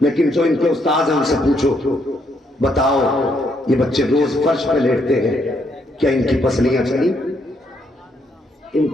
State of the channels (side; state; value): both; normal; correlation 0.74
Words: جو ان کے استاد ہیں ان سے پوچھو بتاؤ یہ بچے روز فرش پہ لیٹتے ہیں، کیا ان کی پسلیاں چلی؟ ان